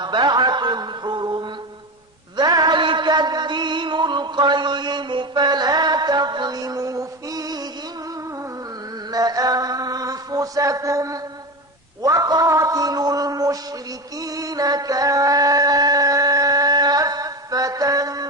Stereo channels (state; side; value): normal; both; correlation 0.23